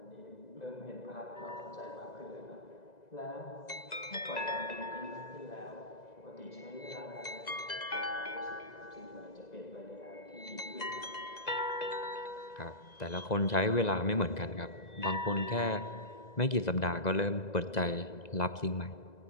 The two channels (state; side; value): late; right; 2.0 ms